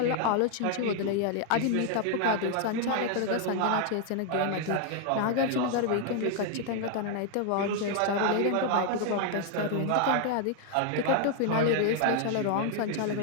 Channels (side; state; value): both; different; correlation 0.00